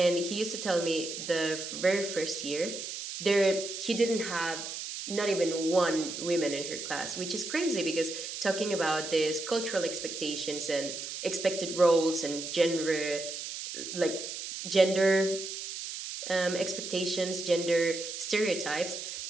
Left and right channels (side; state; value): right; noise; hiss, 7 dB below the sound